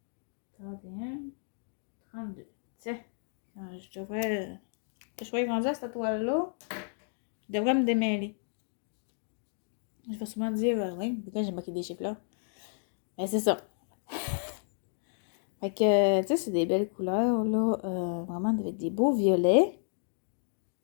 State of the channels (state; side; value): silent; right; digital silence